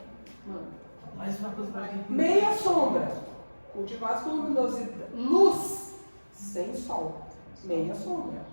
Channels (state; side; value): inverted; both; correlation -1.00